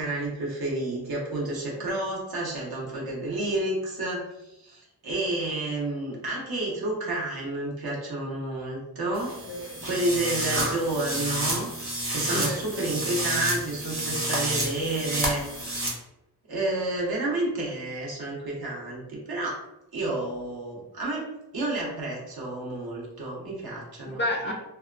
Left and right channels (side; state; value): both; normal; correlation 0.23